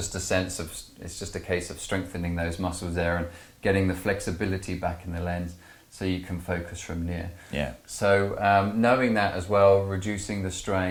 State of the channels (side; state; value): both; identical; correlation 1.00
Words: a case of strengthening those muscles there and getting the flexibility back in the lens so you can focus from near. Yeah. So knowing that as well, reducing the